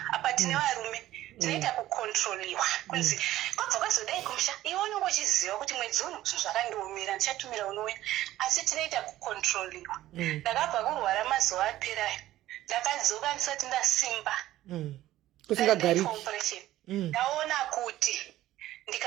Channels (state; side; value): quieter; left; 14.6 dB